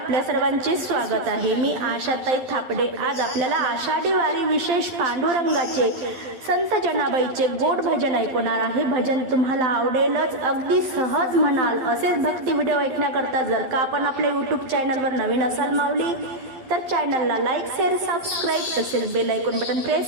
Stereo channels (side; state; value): left; late; 12 ms